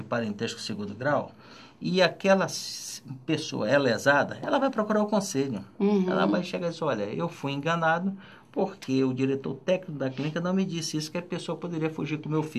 parentesco segundo grau, e aquela pessoa é lesada, ela vai procurar o conselho. Ela vai chegar e dizer, olha, eu fui enganado porque o diretor técnico da clínica não me disse isso, que a pessoa poderia fugir com o meu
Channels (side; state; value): both; identical; correlation 1.00